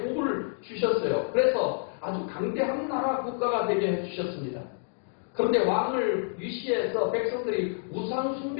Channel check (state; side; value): silent; right; digital silence